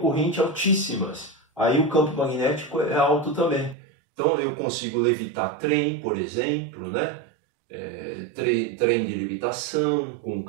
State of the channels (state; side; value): drops out; left; at 3.8 s